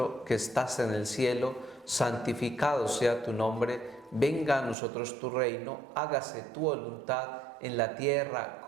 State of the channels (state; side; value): drops out; left; at 4.8 s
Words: que estás en el cielo, santificado sea tu nombre, venga a nosotros tu reino, hágase tu voluntad en la tierra